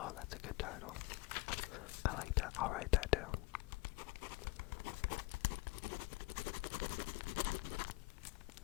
that's a good title. I like that. I'll write that down.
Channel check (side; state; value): right; quieter; 23.0 dB